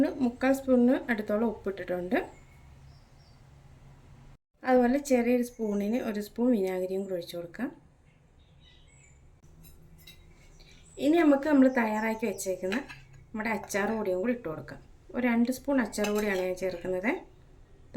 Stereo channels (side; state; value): both; identical; correlation 1.00